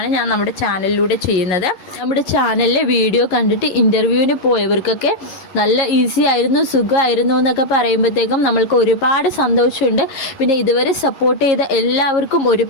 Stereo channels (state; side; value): late; right; 11 ms